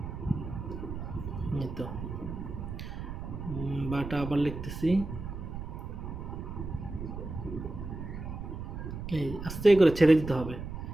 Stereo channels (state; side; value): noise; right; rumble, 7 dB below the sound